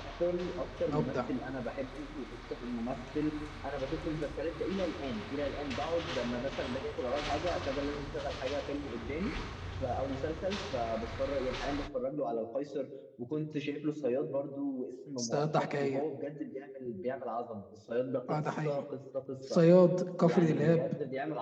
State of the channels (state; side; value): identical; both; correlation 1.00